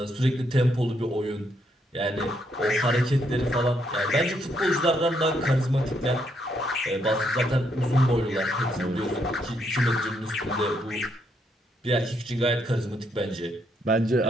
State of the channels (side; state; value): both; normal; correlation 0.75